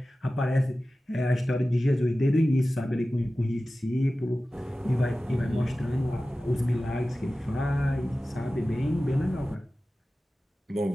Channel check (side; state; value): both; normal; correlation 0.95